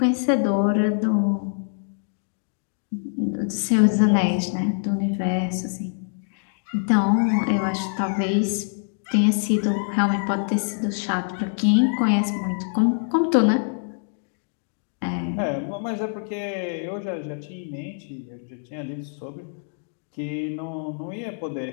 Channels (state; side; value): silent; right; digital silence